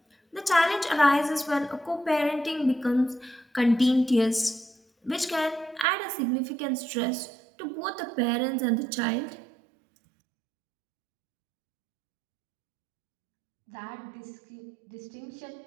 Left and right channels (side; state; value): left; drops out; at 5.9 s